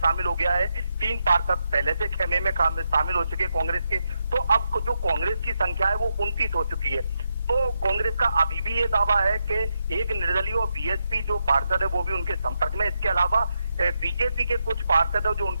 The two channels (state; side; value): inverted; both; correlation -0.84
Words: हो गया है। 3 पार्षद पहले से खेमे में शामिल हो चुके कांग्रेस के। तो अब जो कांग्रेस की संख्या है वो 29 हो चुकी है। तो कांग्रेस का अभी भी ये दावा है कि एक निर्दलीय और बीएसपी जो पार्षद है वो भी उनके संपर्क में। इसके अलावा बीजेपी के कुछ पार्षद है जो